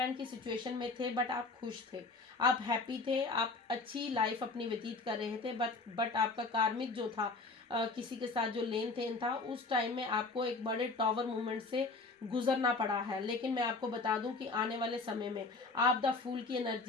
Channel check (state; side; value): quieter; right; 3.7 dB